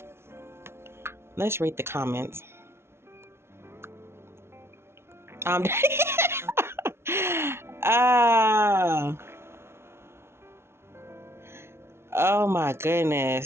Let's read the comments. Ah. Oh my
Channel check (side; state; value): left; late; 0.12 ms